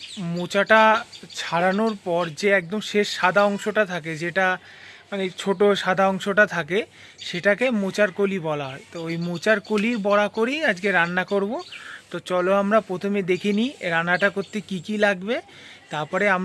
মোচাটা ছাড়ানোর পর যে একদম শেষ সাদা অংশটা থাকে, যেটা মানে ছোট সাদা অংশটা থাকে, সেটাকে মোচার কলি বলা হয়। তো ওই মোচার কলির বড়া করেই আজকে রান্না করব। তো চলো আমরা প্রথমে দেখে নিই রান্নাটা করতে কি কি লাগবে, তারপরে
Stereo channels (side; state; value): both; identical; correlation 1.00